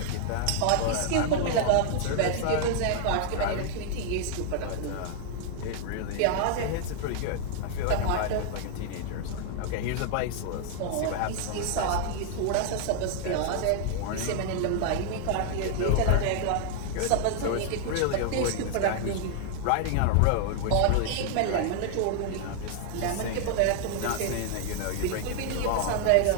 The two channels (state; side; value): different; both; correlation 0.00